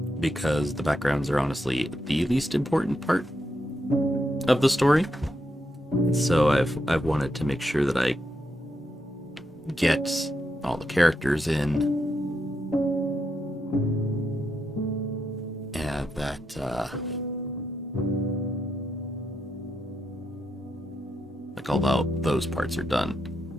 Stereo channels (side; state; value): both; normal; correlation 0.83